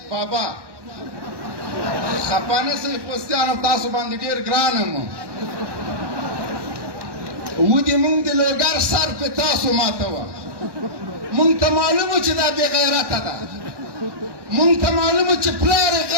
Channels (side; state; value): left; late; 1.1 ms